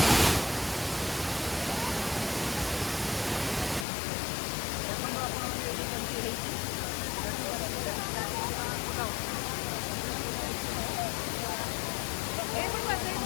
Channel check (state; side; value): drops out; right; at 3.9 s